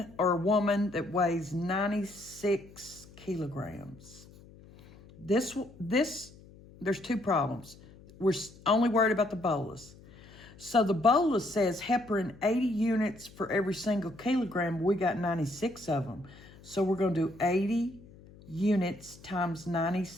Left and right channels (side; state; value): left; noise; hum, 22 dB below the sound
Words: or a woman that weighs 96 kilograms. There's two problems. We're only worried about the bolus. So the bolus says heparin 80 units for every single kilogram. We got 96 of them. So we're going to do 80 units times